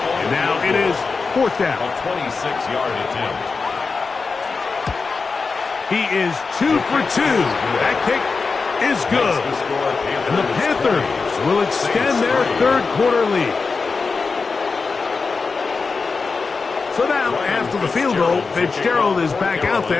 And now it is fourth down. A 26-yard attempt. He is 2 for 2. That kick is good. And the Panthers will extend their third quarter lead. So now, after the field goal, Fitzgerald is back out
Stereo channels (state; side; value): quieter; right; 4.5 dB